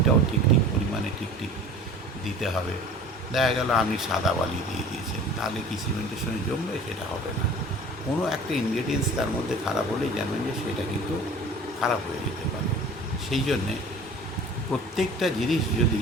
ঠিক ঠিক পরিমাণে ঠিক ঠিক দিতে হবে। দেখা গেল আপনি সাদা বালি দিয়ে দিয়েছেন, তাহলে কি সিমেন্টের সঙ্গে জমবে? সেটা হবে না। কোনো একটা ইনগ্রেডিয়েন্টস তার মধ্যে খারাপ হলেই জানবেন যে সেটা কিন্তু খারাপ হয়ে যেতে পারে। সেই জন্যে প্রত্যেকটা জিনিস যদি,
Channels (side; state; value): both; normal; correlation 0.43